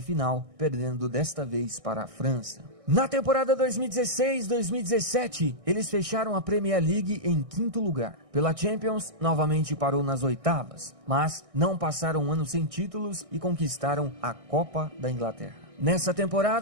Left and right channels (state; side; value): late; left; 1.6 ms